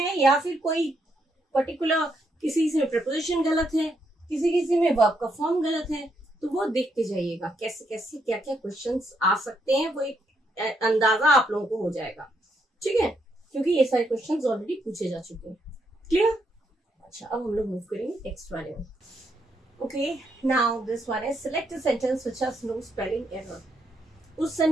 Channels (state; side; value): normal; both; correlation 0.77